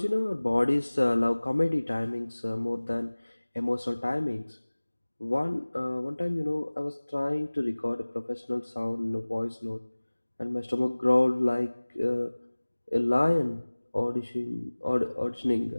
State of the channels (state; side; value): inverted; both; correlation -1.00